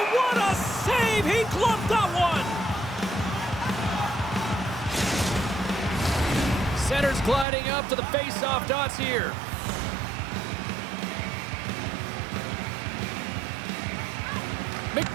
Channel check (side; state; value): left; drops out; at 7.5 s